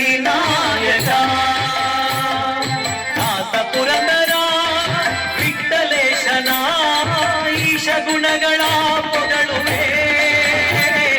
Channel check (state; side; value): identical; both; correlation 1.00